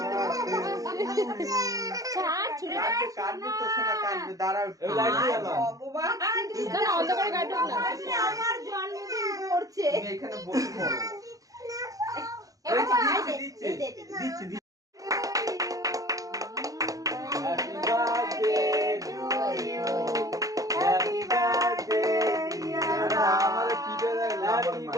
ছাড় ছুড়ে কাটবে তো শোনা, কাটবে, দাঁড়াও এই লাইট জ্বালাও। না অন্ধকারে কাটুক না। আমার জন্মদিন পড়ছে। তুমি এখানে বসে পড়ো। দিচ্ছে দিচ্ছি happy birthday to you. Happy birthday dear. আমারে কি দেয় হ্যাপি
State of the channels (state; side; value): late; left; 0.17 ms